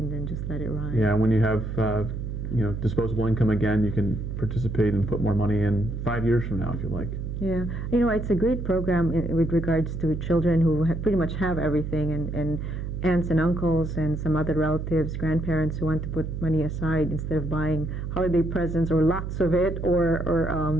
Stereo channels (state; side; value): noise; right; hum, 5 dB below the sound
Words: then just let it ride. Yeah, when you have disposable income again, you can participate and put more money in 5 years from now if you like. Yeah, it's a great program with regards to children who pretty much have everything, and aunts and uncles and some other relatives, grandparents who want to put money aside instead of buying holiday presents or lots of it, or